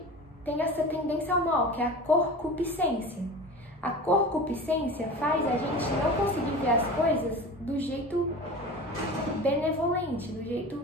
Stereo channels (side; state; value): both; normal; correlation 0.34